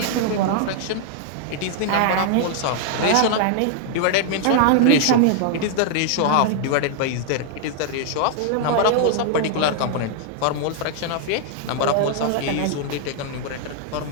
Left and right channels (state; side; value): different; both; correlation 0.00